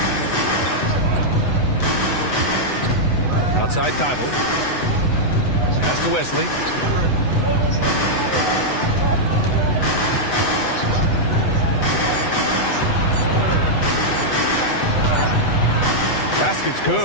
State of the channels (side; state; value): right; late; 8.1 ms